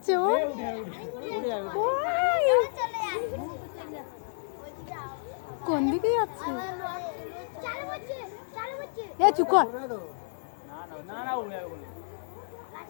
ও কোন দিকে যাচ্ছে চুপ কর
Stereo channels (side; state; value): right; silent; 58 dB below the other